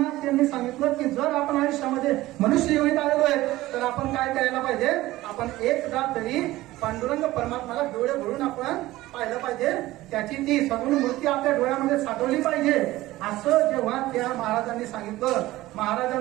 त्यांनी सांगितलं की जर आपण आयुष्यामध्ये मनुष्य योनीत आलेलो आहे तर आपण काय करायला पाहिजे, आपण एकदा तरी पांडुरंग परमात्माला डोळे भरून आपण पाहिलं पाहिजे, त्याची ती सगुण मूर्ती आपल्या डोळ्यामध्ये साठवली पाहिजे. असं जेव्हा त्या महाराजांनी सांगितलं,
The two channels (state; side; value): quieter; left; 17.2 dB